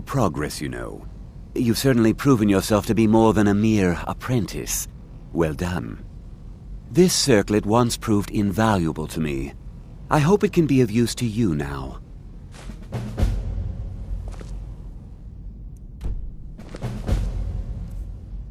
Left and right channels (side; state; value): both; identical; correlation 1.00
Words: progress, you know. You've certainly proven yourself to be more than a mere apprentice. Well done. This circlet once proved invaluable to me. I hope it can be of use to you now.